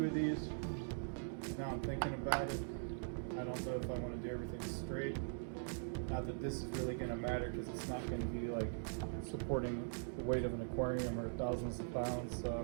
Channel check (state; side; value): silent; left; digital silence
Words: of these. Now I'm thinking about it, I don't know if I want to do everything straight. Not that this is really going to matter, because it's not going to be like supporting the weight of an aquarium or thousands of pounds,